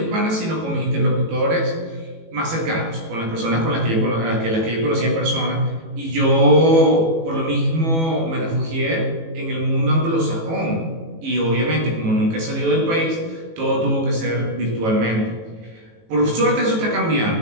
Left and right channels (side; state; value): left; late; 18 ms